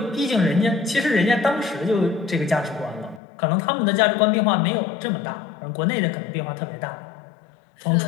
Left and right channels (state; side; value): drops out; right; at 3.2 s